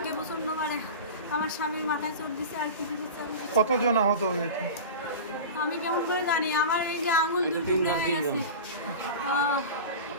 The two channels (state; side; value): inverted; both; correlation -0.31